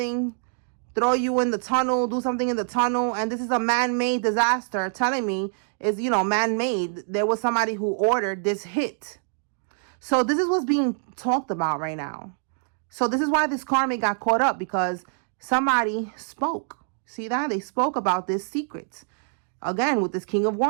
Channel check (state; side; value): silent; left; 62 dB below the other